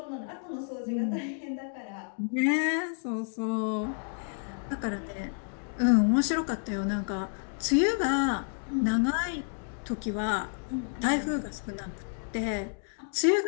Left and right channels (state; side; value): silent; right; 56 dB below the other